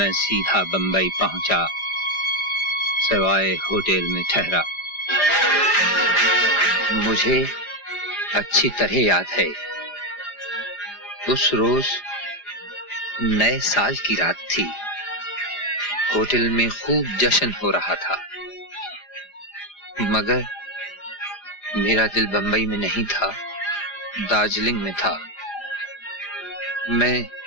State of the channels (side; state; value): right; late; 4.9 ms